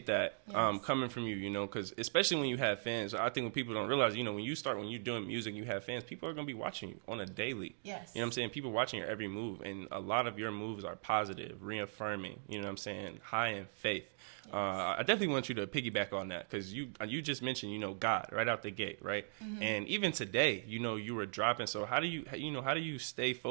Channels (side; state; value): left; silent; digital silence